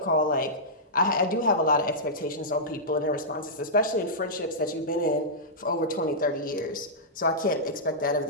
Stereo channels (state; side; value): normal; both; correlation -0.13